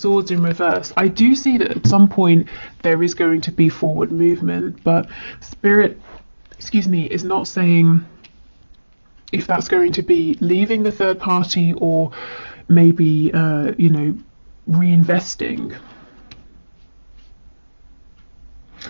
in reverse. I do see that at some point there is going to be forward movement, but Spirit, is not saying if that's going to be leaving the third party or maybe, reinvesting.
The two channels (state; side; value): inverted; both; correlation -1.00